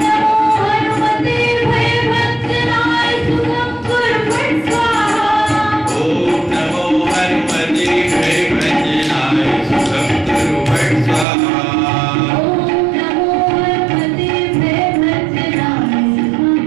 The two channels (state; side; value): drops out; left; at 11.2 s